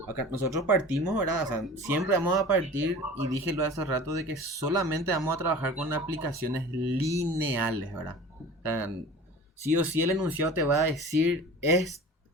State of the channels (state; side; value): normal; both; correlation 0.39